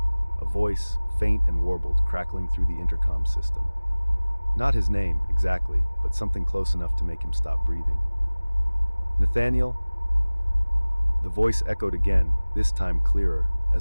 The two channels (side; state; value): both; inverted; correlation -1.00